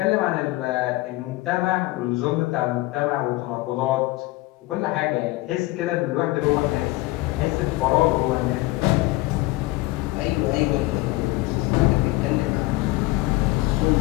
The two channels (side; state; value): right; quieter; 19.9 dB